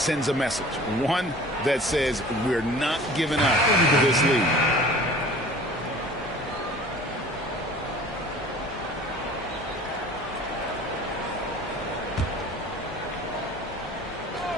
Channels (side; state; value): both; normal; correlation 0.45